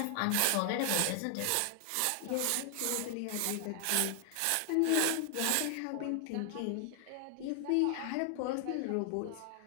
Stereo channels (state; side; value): different; both; correlation 0.00